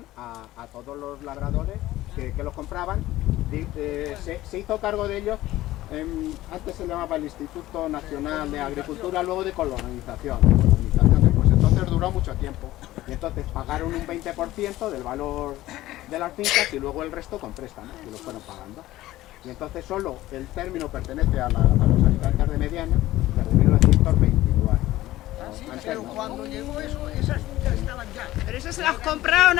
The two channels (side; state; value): right; quieter; 16.0 dB